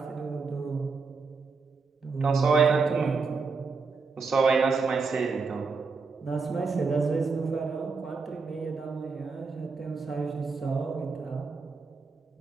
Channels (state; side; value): quieter; left; 4.6 dB